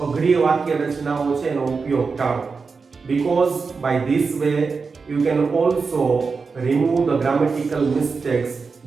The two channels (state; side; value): quieter; left; 4.8 dB